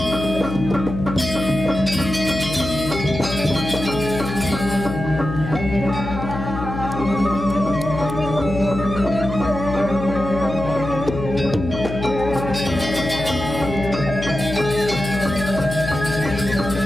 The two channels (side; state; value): left; noise; hum, 7 dB below the sound